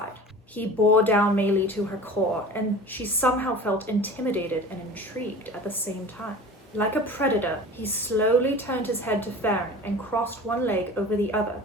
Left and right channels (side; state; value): both; normal; correlation 0.38